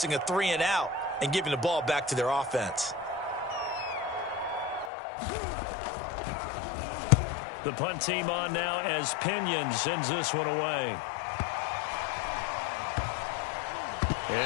a 3-and-out and giving the ball back to their offense? The punt team on now as Pinion sends this one away.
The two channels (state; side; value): drops out; right; at 4.9 s